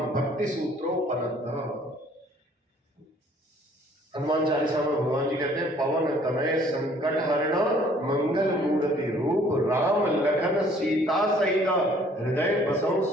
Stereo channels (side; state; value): both; normal; correlation 0.58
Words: भक्ति सूत्रोपनतः। हनुमान चालीसा में भगवान जी कहते हैं, पवन तनय संकट हरण मंगल मूर्ति रूप राम लखन सीता सहित हृदय बसौ